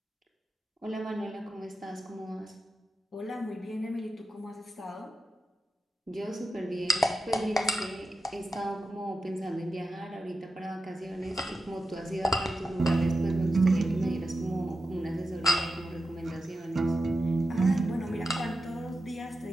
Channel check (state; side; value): normal; both; correlation 0.90